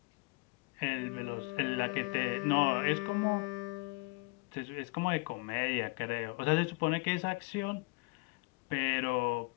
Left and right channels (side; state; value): right; quieter; 28.2 dB